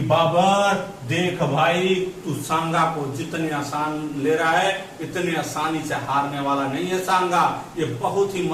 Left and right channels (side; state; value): both; identical; correlation 1.00